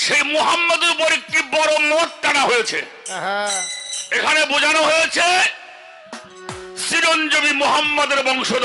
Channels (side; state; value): both; identical; correlation 1.00